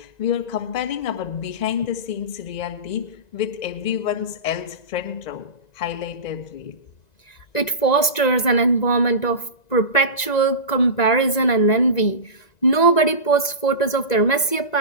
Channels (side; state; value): right; late; 1.9 ms